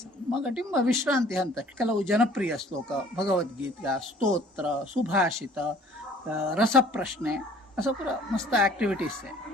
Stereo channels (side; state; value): both; normal; correlation 0.53